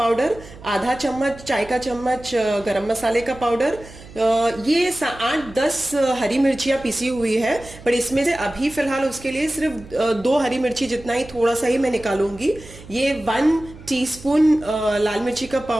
आधा चम्मच चाय का चम्मच गरम मसाले का पाउडर। ये 8-10 हरी मिर्चियाँ पिसी हुई है, पर इसमें से अभी फिलहाल उसके लिए सिर्फ 2 हरी मिर्ची जितना ही थोड़ा सा ही मैं निकालूंगी। ये 1 टीस्पून लाल मिर्ची का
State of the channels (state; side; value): noise; right; hum, 18 dB below the sound